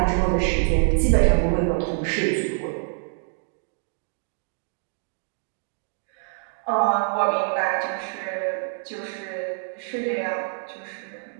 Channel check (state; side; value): silent; left; digital silence